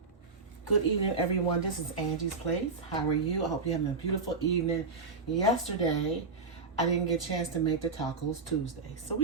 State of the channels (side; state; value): left; quieter; 4.2 dB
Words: Good evening, everyone. This is Angie's Place. How are you? I hope you're having a beautiful evening. Yesterday, I didn't get a chance to make the Tacos Tuesday, so